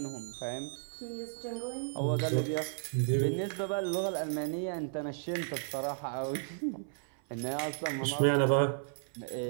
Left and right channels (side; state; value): left; silent; 55 dB below the other